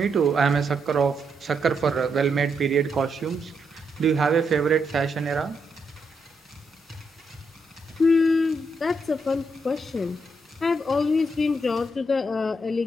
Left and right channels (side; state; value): both; normal; correlation 0.79